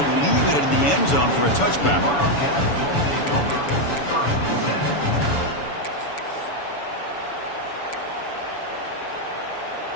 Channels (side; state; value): right; late; 7.0 ms